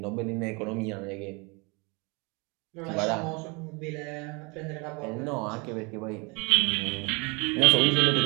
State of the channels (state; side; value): quieter; left; 29.4 dB